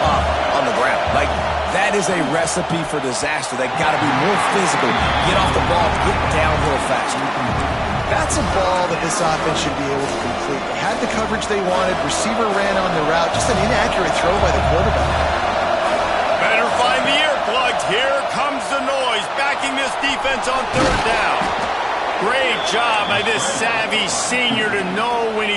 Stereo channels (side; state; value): both; identical; correlation 1.00